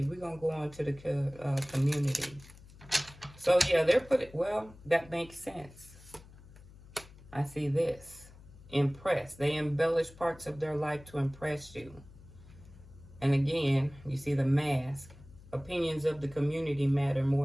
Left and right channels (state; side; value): noise; left; hum, 21 dB below the sound